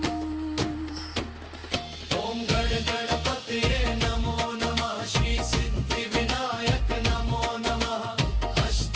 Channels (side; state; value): both; identical; correlation 1.00